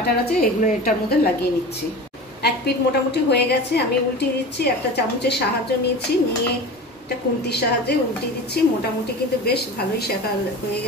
আছে এগুলো এটার মধ্যে লাগিয়ে নিচ্ছি। এক পিঠ মোটামুটি হয়ে গেছে, আমি উল্টিয়ে দিচ্ছি। একটা চামচের সাহায্য নিয়ে একটা খুন্তির সাহায্যে উল্টিয়ে দিচ্ছি। মোটামুটি কিন্তু বেশ ভালোই শেখা হয়ে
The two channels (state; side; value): normal; both; correlation 0.33